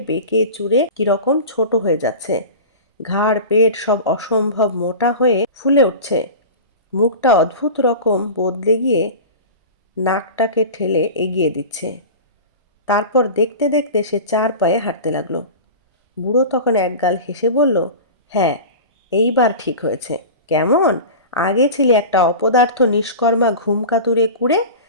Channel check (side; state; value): both; inverted; correlation -0.32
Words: বেঁকে চুরে কিরকম ছোট হয়ে যাচ্ছে। ঘাড় পেট সব অসম্ভব মোটা হয়ে ফুলে উঠছে। মুখটা অদ্ভুত রকম বদলে গিয়ে নাকটাকে ঠেলে এগিয়ে দিচ্ছে। তারপর দেখতে দেখতে সে 4 পায়ে হাঁটতে লাগলো। বুড়ো তখন একগাল হেসে বলল, হ্যাঁ, এইবার ঠিক হয়েছে। কেমন? আগে ছিলি একটা অপদার্থ নিষ্কর্মা ঘুমকাতুরে কুড়ে,